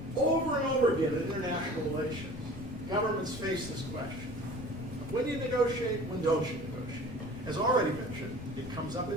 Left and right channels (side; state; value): left; noise; rumble, 14 dB below the sound